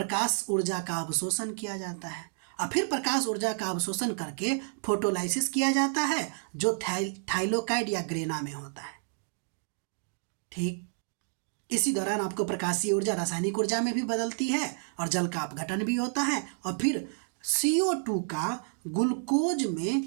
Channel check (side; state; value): left; silent; digital silence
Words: ऊर्जा का अवशोषण किया जाता है और फिर प्रकाश ऊर्जा का अवशोषण करके फोटोलाइसिस किया जाता है जो थाइलोकाइड या ग्रेना में होता है। ठीक इसी दौरान आपको प्रकाशीय ऊर्जा रासायनिक ऊर्जा में भी बदलती है और जल का अपघटन भी होता है और फिर CO2 का ग्लूकोज